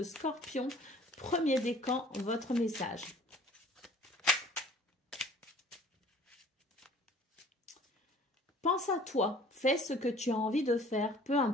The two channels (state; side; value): normal; both; correlation 0.51